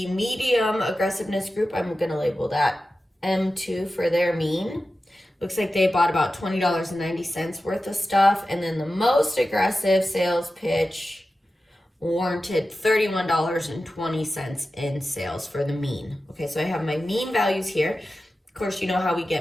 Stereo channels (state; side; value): normal; both; correlation 0.93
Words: medium aggressiveness group, I'm going to label that M2 for their mean. Looks like they bought about $20.90 worth of stuff. And then the most aggressive sales pitch warranted $31.20 in sales for the mean. Okay, so I have my mean values here. Of course, you know how we